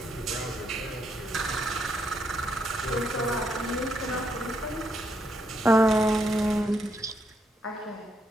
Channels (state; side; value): normal; both; correlation 0.77